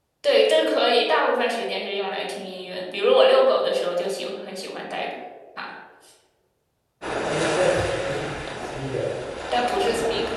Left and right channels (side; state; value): both; identical; correlation 1.00